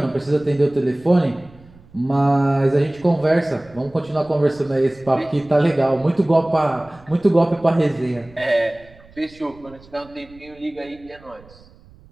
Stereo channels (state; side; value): noise; right; rumble, 25 dB below the sound